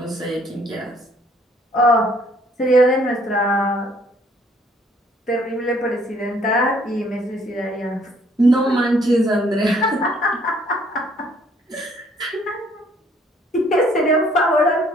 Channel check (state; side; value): normal; both; correlation 0.62